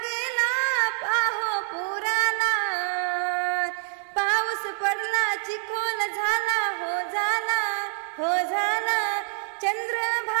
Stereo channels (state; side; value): silent; left; digital silence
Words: पाहो पुराला. पाऊस पडला चिखोल झाला हो झाला हो झाला,